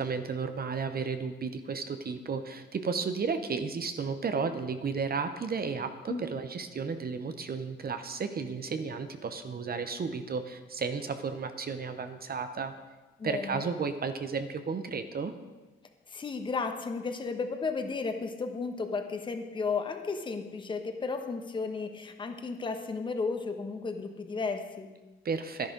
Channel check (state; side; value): normal; both; correlation 0.43